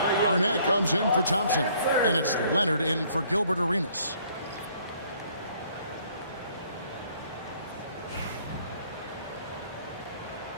Arnett comes in for Thompson, and it's Leonard in for Gilbert Arenas.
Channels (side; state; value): both; inverted; correlation -0.62